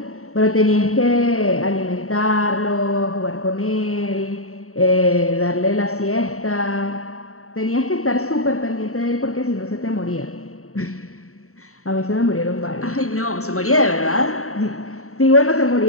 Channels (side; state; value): right; late; 0.64 ms